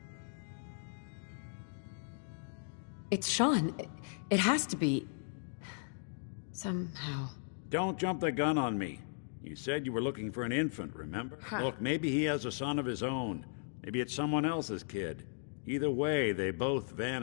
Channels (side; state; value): right; silent; digital silence